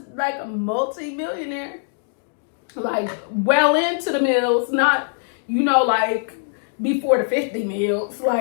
like a multi-millionaire, like well into the mills, not, you know, like before the 50 mils.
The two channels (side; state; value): right; silent; digital silence